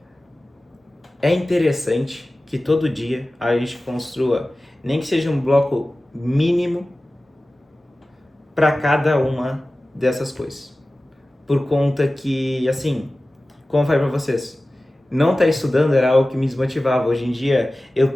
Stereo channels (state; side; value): normal; both; correlation 0.96